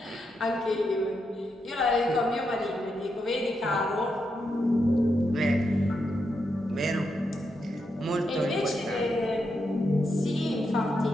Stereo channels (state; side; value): normal; both; correlation 0.83